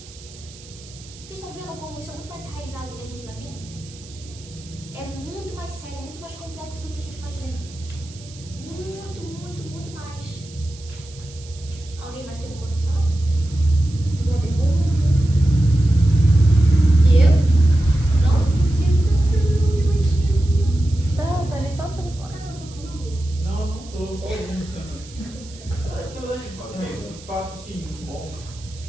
Vocês estão vendo como isso é muito mais enraizado do que a gente imagina? É muito mais sério, muito mais complexo do que a gente imagina. Muito, muito, muito mais. Alguém mais tem alguma coisa pra falar? Alguma pergunta? Diego? Não? Tá ali só no telefone. Não tô só ouvindo. De fato, sim, muito bom.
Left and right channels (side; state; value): right; noise; hiss, 20 dB below the sound